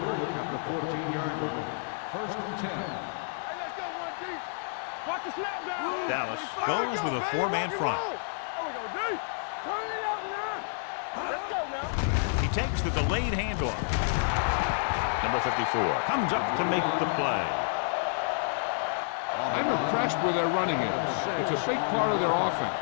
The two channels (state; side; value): silent; right; digital silence